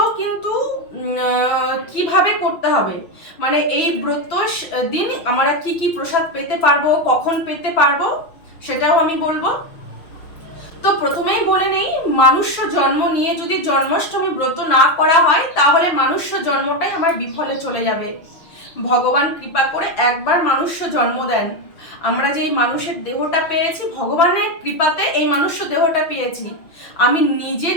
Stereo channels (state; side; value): late; right; 6.1 ms